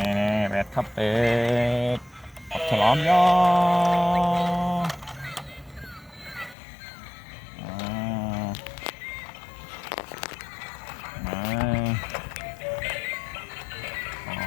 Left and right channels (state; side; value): drops out; right; at 6.6 s